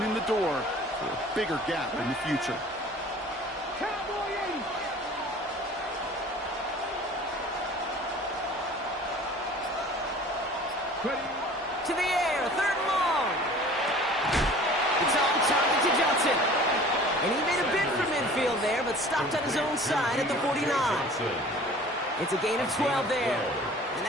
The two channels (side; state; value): both; normal; correlation 0.46